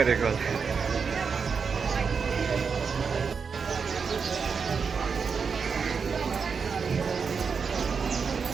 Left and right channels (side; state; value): left; quieter; 5.7 dB